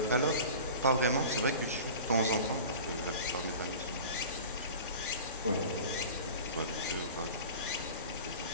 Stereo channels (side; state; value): both; inverted; correlation -0.38